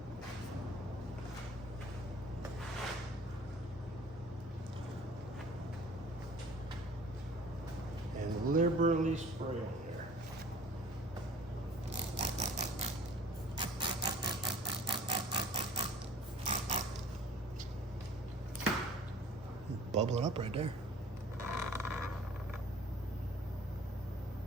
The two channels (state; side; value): normal; both; correlation 0.49